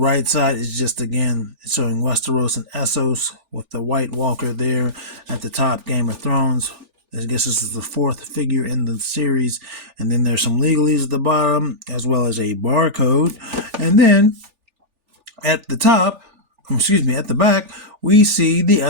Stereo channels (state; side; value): late; left; 3.4 ms